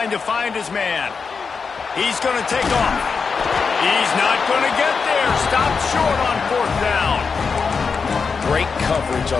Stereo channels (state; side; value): quieter; right; 5.3 dB